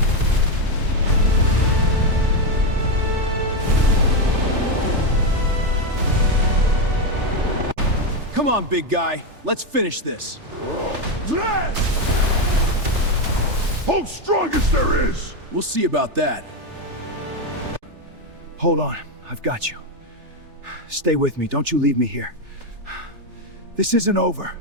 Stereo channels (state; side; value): late; left; 3.4 ms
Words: Come on, big guy. Let's finish this. Oh, strongest there is! We'll see about that. Hold on, I've got you. Stay with me, don't you leave me here. This isn't over.